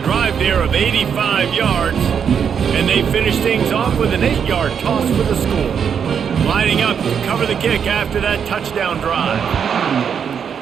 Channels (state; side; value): quieter; left; 7.4 dB